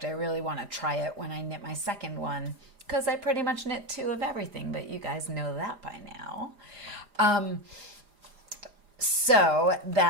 I really want to try it when I knit my second one, because I pretty much knit 2 of everything, but you guys know that by now. So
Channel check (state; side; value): late; left; 4.9 ms